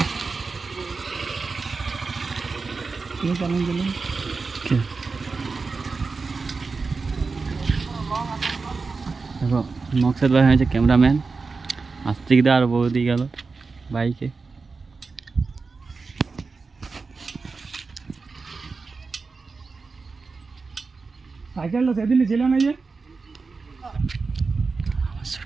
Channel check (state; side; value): quieter; left; 4.4 dB